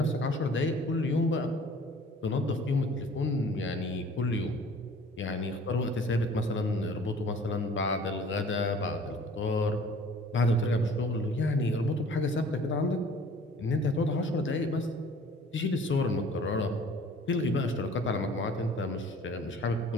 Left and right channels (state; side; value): normal; both; correlation 0.50